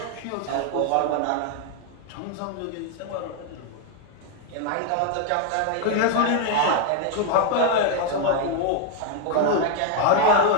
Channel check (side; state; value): both; different; correlation 0.01